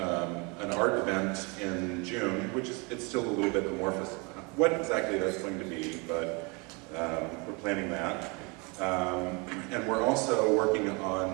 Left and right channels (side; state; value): left; quieter; 30.2 dB